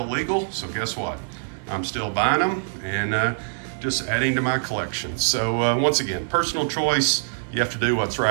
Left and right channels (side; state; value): left; silent; digital silence